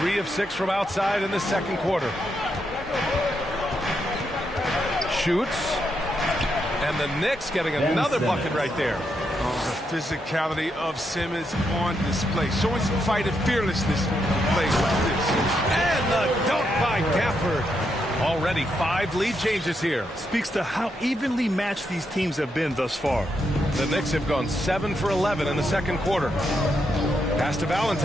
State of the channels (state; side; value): normal; both; correlation 0.81